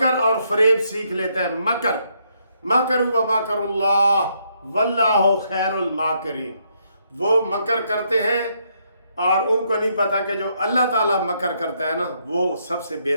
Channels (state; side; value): inverted; both; correlation -0.74